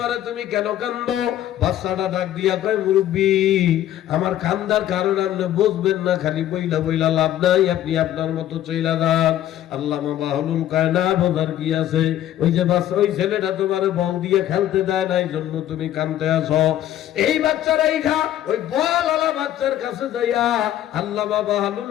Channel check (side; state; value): right; quieter; 12.2 dB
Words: তুমি কেন কান্দো? বাচ্চাটা ডাক দিয়া কয়, মুরব্বি আমার কান্দার কারণ আপনি বুঝবেন না, খালি বইলা বইলা লাভ নাই, আপনি আপনার মতো চইলা যান। আল্লামা বাহলুল কয়, না বোঝার কি আছে, ওই যে বাচ্চা, ওই ছেলেটা তোমারে বল দিয়ে খেলতে দেয় না, এই জন্য তুমি কান্দতে আসো। এই বাচ্চারা এইখা ওই বল আলা বাচ্চার কাছে যাইয়া আল্লামা বাহলুল